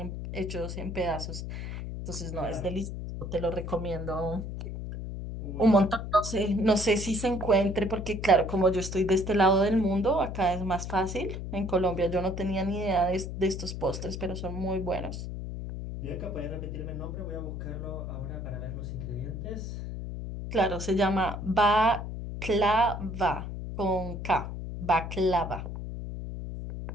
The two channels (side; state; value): left; noise; hum, 6 dB below the sound